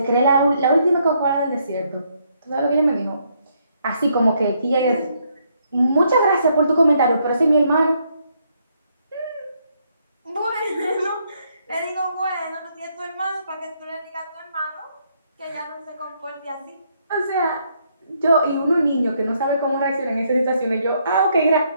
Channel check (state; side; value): inverted; both; correlation -0.73